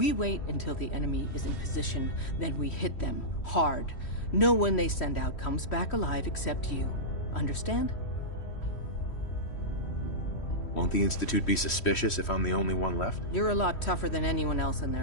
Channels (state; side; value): late; right; 3.1 ms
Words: wait until the enemy is in position, then we hit them hard. No one they send out comes back alive except you. Understand? Won't the Institute be suspicious if I'm the only one left? You're a lot tougher than anyone else in